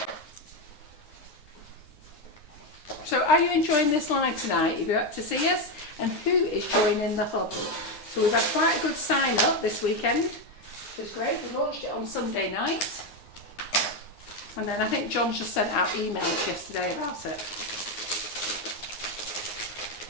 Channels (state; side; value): late; right; 9.7 ms